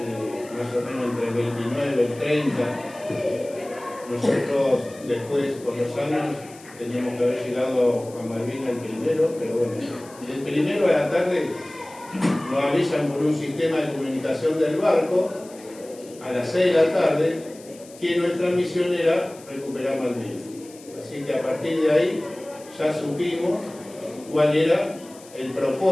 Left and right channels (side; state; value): left; noise; hiss, 22 dB below the sound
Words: más o menos entre el 29 y el 30. Nosotros después, con los años, teníamos que haber llegado a Malvinas el primero, pero bueno, el primero a la tarde nos avisan por un sistema de comunicación del barco, a las 6 de la tarde, que nuestra misión era recuperar Malvinas. Así que a partir de ahí ya supimos cuál era el